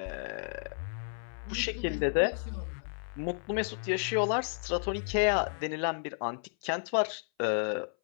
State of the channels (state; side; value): silent; right; 56 dB below the other